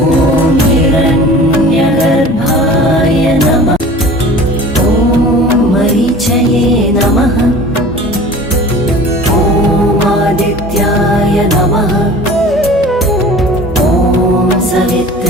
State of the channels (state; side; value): normal; both; correlation 0.42